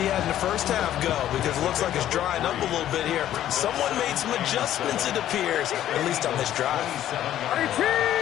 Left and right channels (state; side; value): quieter; right; 12.0 dB